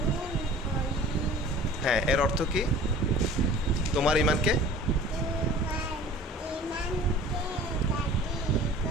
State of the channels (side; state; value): both; normal; correlation 0.45